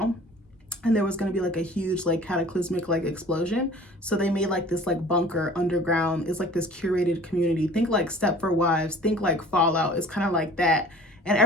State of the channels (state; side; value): normal; both; correlation 0.47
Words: and there was going to be like a huge like cataclysmic like explosion, so they made like this like bunker underground. It's like this curated community. Think like Stepford Wives, think like Fallout. It's kind of like that, and